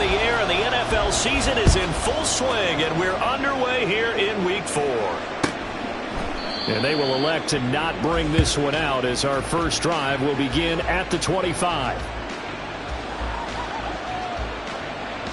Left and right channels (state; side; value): identical; both; correlation 1.00